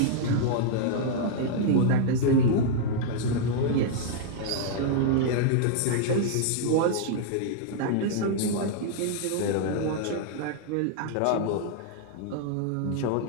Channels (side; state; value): both; different; correlation -0.01